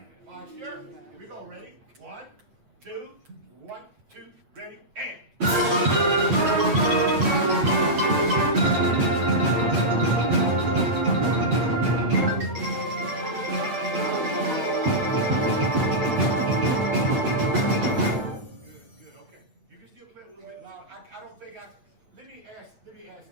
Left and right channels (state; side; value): late; left; 8.2 ms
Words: Posture. Here we go. Ready? 1, 2, 1, 2, ready, and. Let me